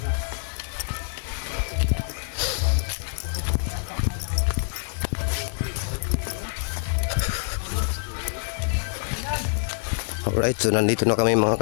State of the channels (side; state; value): right; silent; digital silence